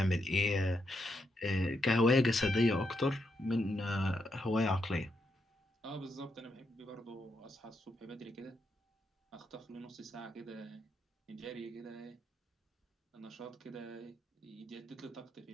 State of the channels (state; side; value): normal; both; correlation 0.81